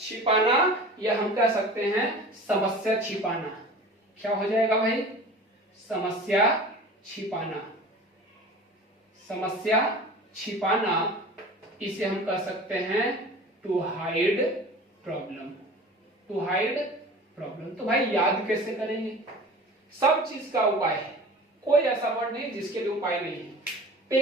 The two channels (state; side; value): normal; both; correlation 0.39